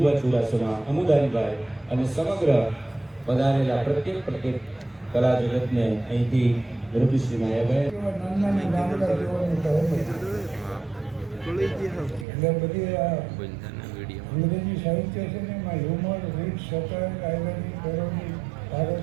ચુડાસમા, અમુદાનભાઈ અને સમગ્ર પધારેલા પ્રત્યેક કલા જગતને અહીંથી રૂપશ્રી માયાભાઈ અંગ્રેજી સાહિત્ય છે ને એમાં હ્યુમર, રીત, સટર, આયરની, પેરોડી, ભારત,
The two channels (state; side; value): drops out; left; at 12.2 s